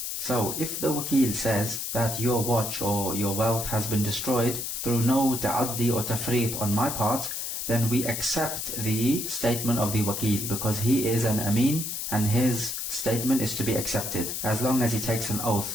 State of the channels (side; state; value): left; noise; hiss, 4 dB below the sound